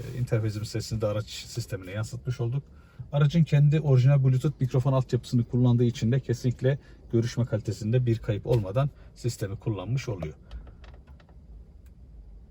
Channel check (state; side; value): identical; both; correlation 1.00